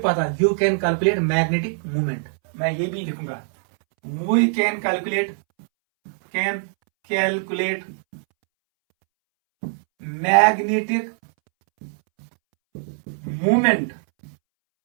पता, you can calculate magnetic movement. मैं ये भी लिखूंगा, we can calculate magnetic movement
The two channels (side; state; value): left; silent; 64 dB below the other